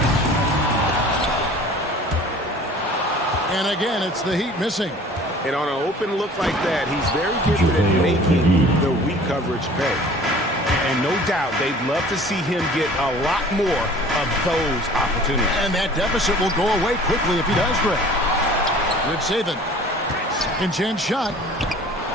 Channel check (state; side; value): normal; both; correlation 0.47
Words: And again, it's the Heat missing. And on an open look like that, he's very gifted at making the weak coverage pay. And no doubt, they'd love to see him get a lot more of those opportunities. And that deficit will go away quickly if he does, Greg. Rich Saban. Second chance shot.